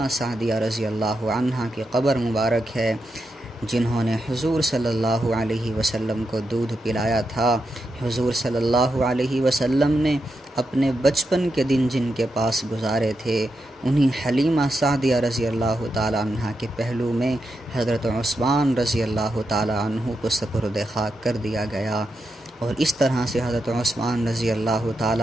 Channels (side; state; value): both; normal; correlation 0.86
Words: سعدیہ رضی اللہ عنہا کی قبر مبارک ہے، جنہوں نے حضور صلی اللہ علیہ وسلم کو دودھ پلایا تھا۔ حضور صلی اللہ علیہ وسلم نے اپنے بچپن کے دن جن کے پاس گزارے تھے، انہی حلیمہ سعدیہ رضی اللہ تعالی عنہ کے پہلو میں حضرت عثمان رضی اللہ تعالی عنہ کو سپرد خاک کر دیا گیا، اور اس طرح سے حضرت عثمان رضی اللہ تعالی